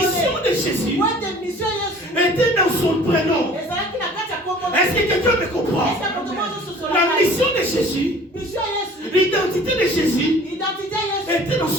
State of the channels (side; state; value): both; normal; correlation 0.48